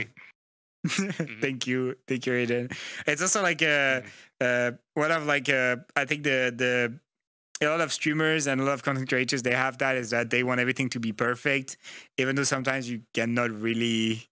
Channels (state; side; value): identical; both; correlation 1.00